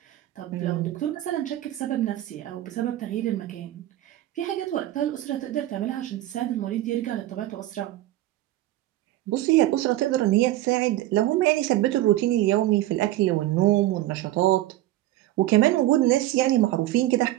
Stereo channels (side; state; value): left; quieter; 15.2 dB